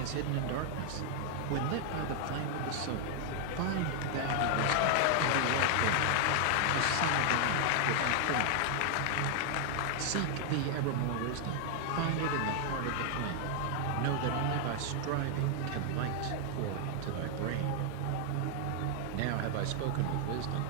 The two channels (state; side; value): different; both; correlation 0.00